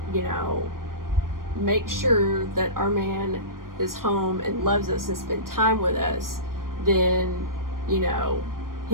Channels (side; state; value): left; late; 0.91 ms